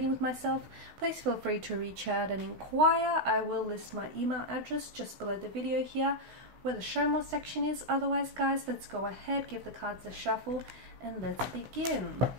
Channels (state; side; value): late; left; 16 ms